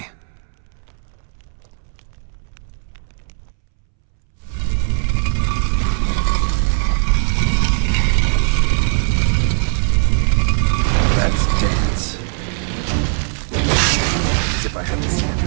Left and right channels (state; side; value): silent; left; 67 dB below the other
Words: Let's dance. As if I haven't seen